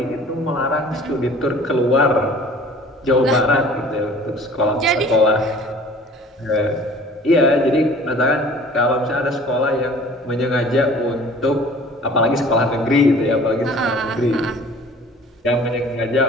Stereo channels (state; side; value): normal; both; correlation 0.48